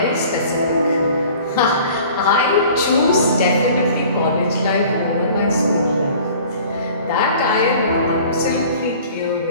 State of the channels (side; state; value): both; inverted; correlation -0.48